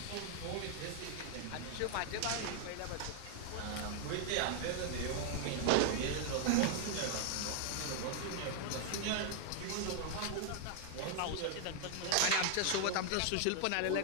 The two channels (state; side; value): different; both; correlation 0.00